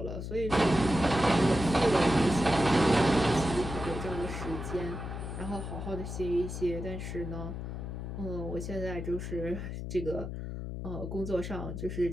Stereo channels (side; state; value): left; noise; hum, 6 dB below the sound